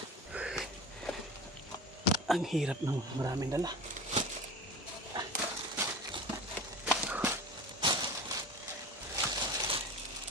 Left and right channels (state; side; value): normal; both; correlation 0.34